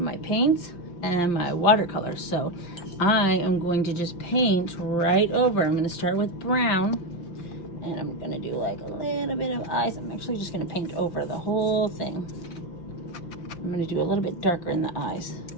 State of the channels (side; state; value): right; late; 5.6 ms